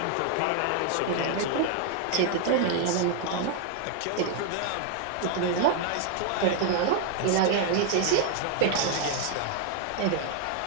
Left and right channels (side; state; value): both; different; correlation 0.00